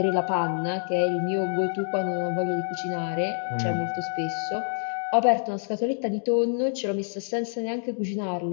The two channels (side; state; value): right; silent; digital silence